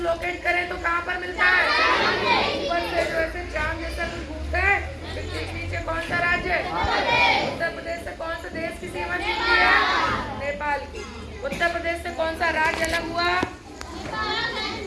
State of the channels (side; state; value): both; identical; correlation 1.00